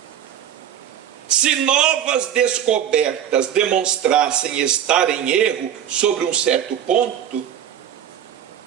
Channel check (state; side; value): quieter; left; 9.8 dB